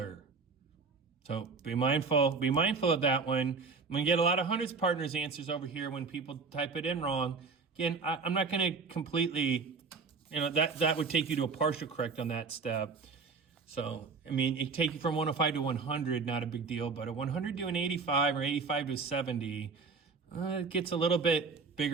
So be mindful of that one. I'm going to get a lot of hundreds partners answers over here when people type it in wrong. Again, I'm not going to completely, that would take you to a partial correct on that step. So, it take you from 105 to 100, not a big deal, but a 100 to an 85 or 85 to a 70, it gets a little bit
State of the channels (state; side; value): quieter; left; 4.7 dB